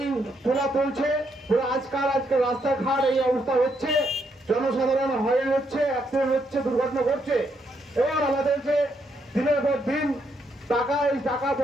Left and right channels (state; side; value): normal; both; correlation 0.77